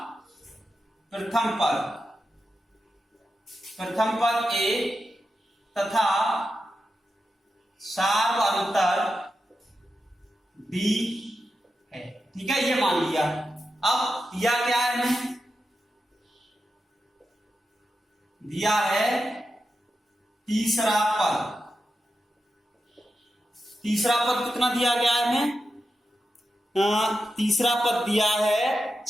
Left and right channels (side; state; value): both; normal; correlation 0.89